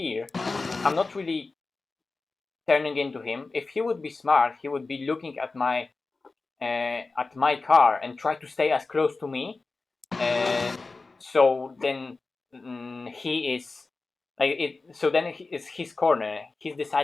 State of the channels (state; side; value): quieter; right; 3.8 dB